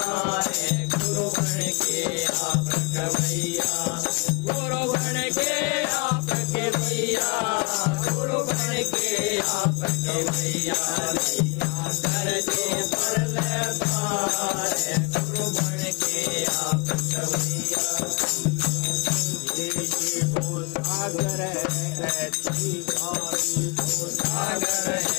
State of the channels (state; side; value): quieter; right; 29.6 dB